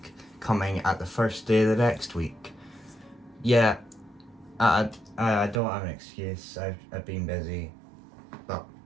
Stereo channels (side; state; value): left; drops out; at 5.6 s